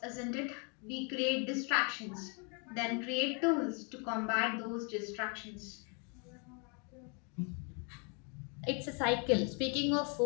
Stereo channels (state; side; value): quieter; right; 36.1 dB